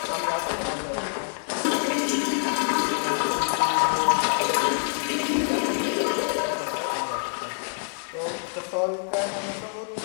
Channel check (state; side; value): silent; right; 61 dB below the other